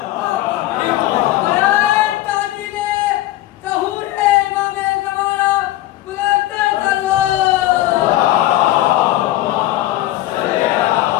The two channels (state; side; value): quieter; right; 15.4 dB